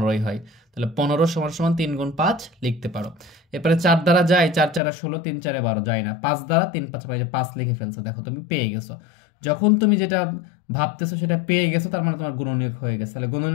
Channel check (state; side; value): drops out; right; at 4.8 s